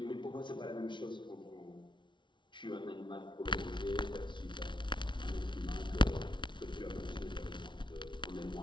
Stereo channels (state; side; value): late; right; 0.23 ms